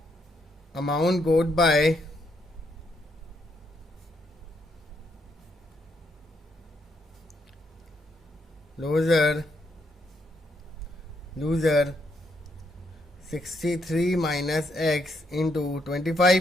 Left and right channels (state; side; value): normal; both; correlation 0.75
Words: Amount got by loser 63 minus x into